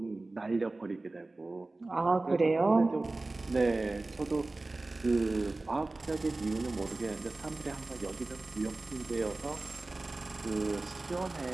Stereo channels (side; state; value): left; quieter; 3.1 dB